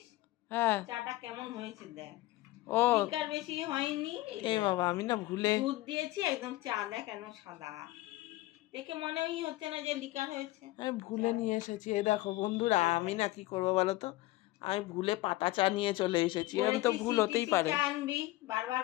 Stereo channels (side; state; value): right; quieter; 18.2 dB